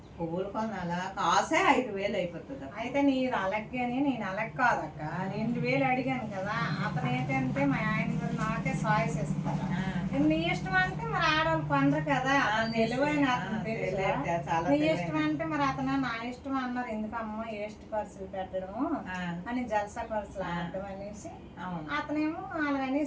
పువ్వులు కొనాలా, కాసే 5,000 అయిపోతుంది. అయితే నీరు అలగ్గాని నేను అలగ్ కాదక్క. 2,000 అడిగాను కదా. అతను ఏంటంటే మా ఆయన గారు నాకే సాయిస్ ఇస్తారు. నీ ఇష్టం అంటే మరి ఆడవాళ్ళు కొనరు కదా. తెలివైన అతను తెలుసు. నీ ఇష్టం అంటే మరి అతను నా ఇష్టం అన్నారు. ఎందుకమ్మా వేస్ట్ ఖర్చులు పెట్టడము అని జల్సా ఖర్చులు ఆడటం అనేసి అతనేమో అలాగ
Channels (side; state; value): both; identical; correlation 1.00